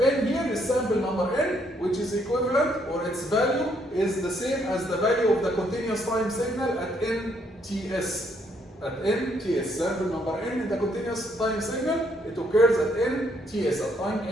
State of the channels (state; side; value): normal; both; correlation 0.70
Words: here is sample number n, which is equivalent, or its value is the same as the value of the continuous time signal at nts. At nts, sample number n in the continuous time signal, it occurs at nts, at time